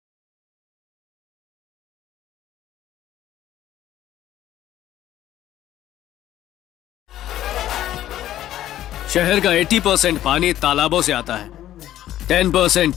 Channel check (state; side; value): quieter; right; 12.8 dB